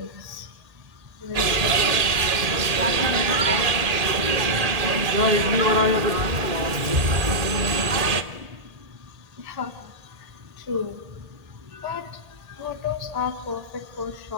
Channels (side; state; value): left; late; 1.8 ms